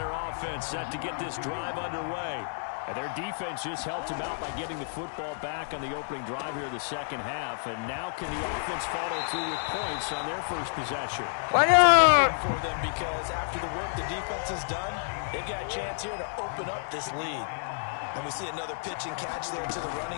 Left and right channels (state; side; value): silent; right; 58 dB below the other